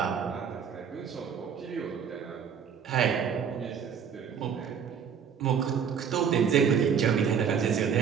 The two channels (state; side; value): quieter; left; 7.3 dB